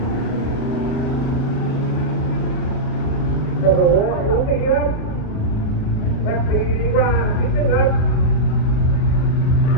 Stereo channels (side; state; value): right; late; 38 ms